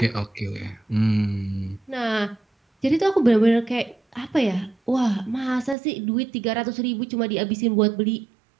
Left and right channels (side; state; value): left; drops out; at 5.8 s